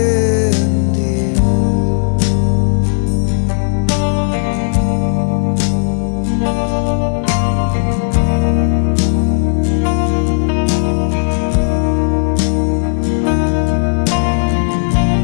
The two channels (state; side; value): silent; right; digital silence